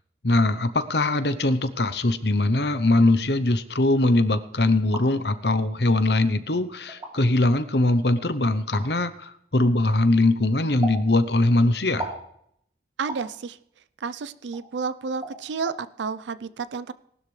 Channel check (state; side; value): normal; both; correlation 0.69